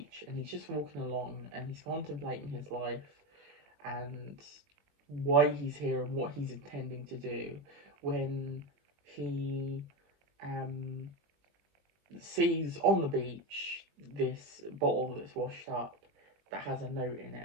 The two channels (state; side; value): late; left; 21 ms